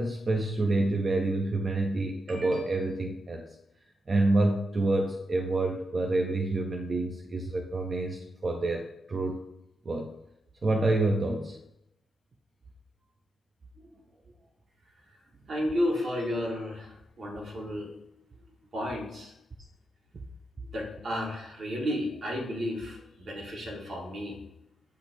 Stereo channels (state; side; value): normal; both; correlation 0.86